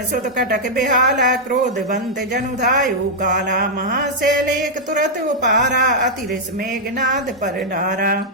सुत कटक बेहाला, क्रोधवंत जनुधायु काला। महाशैल एक तुरत उपारा, अतिरिस मेघनाद पर डारा।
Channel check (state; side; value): normal; both; correlation -0.06